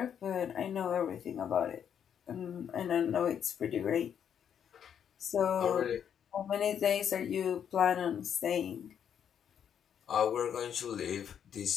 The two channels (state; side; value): quieter; right; 8.5 dB